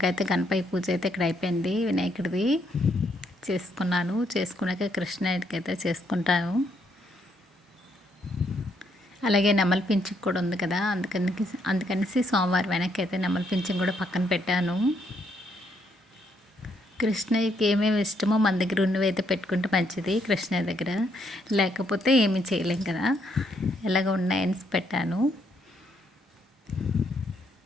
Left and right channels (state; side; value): normal; both; correlation 0.73